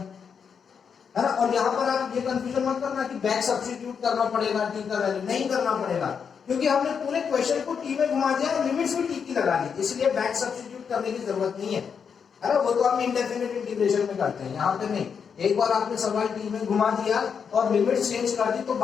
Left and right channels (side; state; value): right; quieter; 6.6 dB